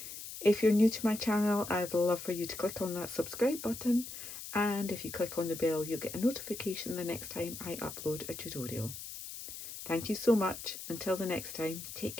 If you're new to my channel, I'd love for you to click on that subscribe button, and if you click on the bell, you'll get a notification the next time I upload a tutorial. Thank you so much. Until the next time, take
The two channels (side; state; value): left; noise; hiss, 10 dB below the sound